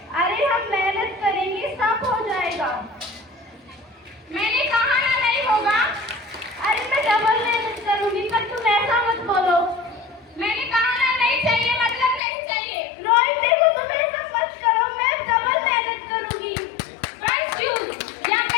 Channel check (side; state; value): right; drops out; at 12.2 s